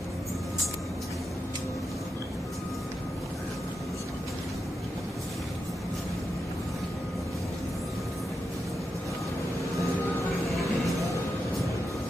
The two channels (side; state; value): both; normal; correlation 0.87